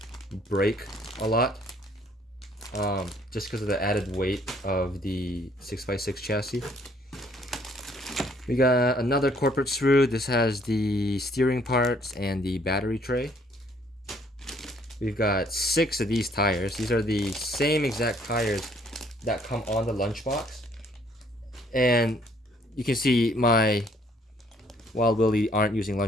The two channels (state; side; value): normal; both; correlation 0.63